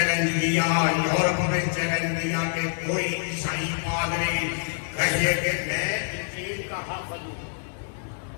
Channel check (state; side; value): silent; right; 58 dB below the other